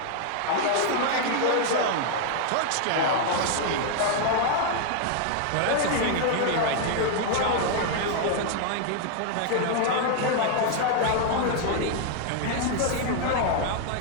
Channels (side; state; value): both; different; correlation 0.00